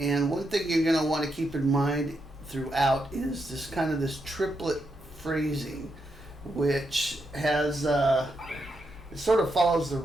one thing you're going to want to keep in mind throughout is this triplet phrasing, which has it sort of follows the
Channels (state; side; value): normal; both; correlation 0.83